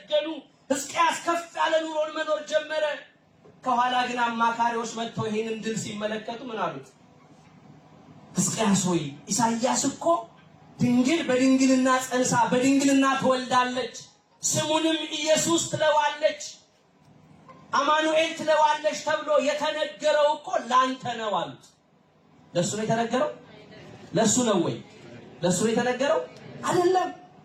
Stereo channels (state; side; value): identical; both; correlation 1.00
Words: ሕዝቅያስ ከፍ ያለ ኑሮን መኖር ጀመረ። ከኋላ ግን አማካሪዎች መጥተው ይሄንን ድል ሲመለከቱ ምን አሉት? ሕዝቅያስ ሆይ ኢሳይያስ እኮ ድንግል በድንግልና ጸንሳ በድንግልና ትወልዳለች፣ ስሙንም ኢየሱስ ትለዋለች፣ አማኑኤል ትለዋለች ተብሎ የተነገረው እኮ ላንተ ነው አሉት። ለሱ ነው የተነገረው? ለሱ ነው ወይ? ለሱ ነው የተነገረው? አይደለም።